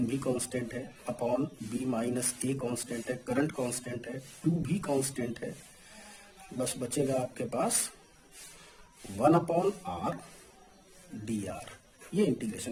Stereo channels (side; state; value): both; identical; correlation 1.00